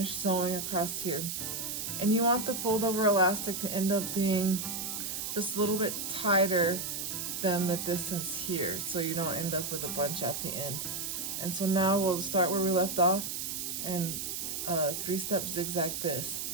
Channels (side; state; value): right; noise; hiss, 4 dB below the sound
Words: sewing across here. And you want the fold over elastic to end up being just a little bit tighter than the distance here, so you don't end up with a bunch at the end. And so now we'll start where we left off and 3-step zigzag this,